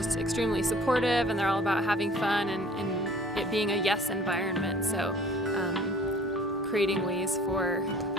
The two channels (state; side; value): normal; both; correlation 0.50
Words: extremely supportive, and they're all about having fun and it being a yes environment. So creating ways for